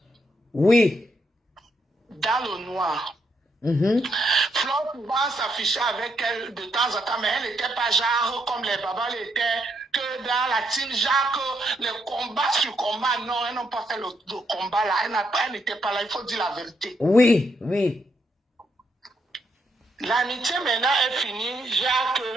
Oui. Dans le noir. Flore pouvait s'afficher avec elle de temps en temps, mais elle n'était pas genre comme les babas l'étaient, que dans la team Jacques, les combats sur combat, non, elles n'ont pas fait le combat là, elle n'était pas là, il faut dire la vérité. Oui. L'amitié maintenant est finie, Jacques,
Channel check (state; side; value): normal; both; correlation 0.77